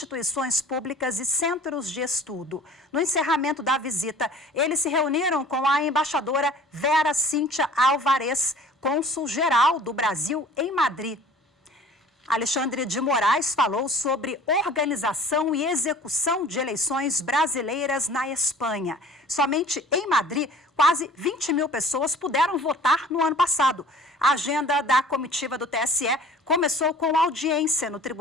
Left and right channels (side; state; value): both; normal; correlation 0.47